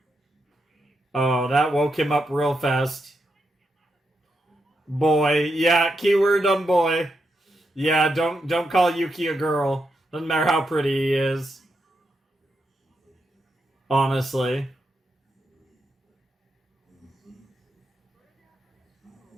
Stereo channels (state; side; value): normal; both; correlation 0.83